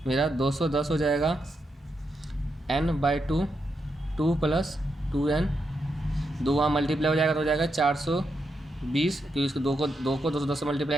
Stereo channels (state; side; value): normal; both; correlation 0.83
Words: मेरा 210 हो जाएगा n/2, 2 प्लस 2n, 2 वहाँ मल्टीप्लाई हो जाएगा तो हो जाएगा 420, क्योंकि इसको 2 को 210 से